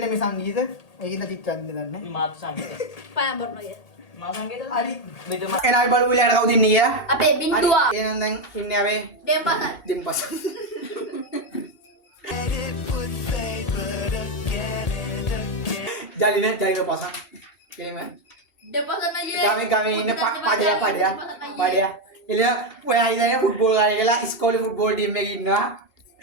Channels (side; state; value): right; late; 1.8 ms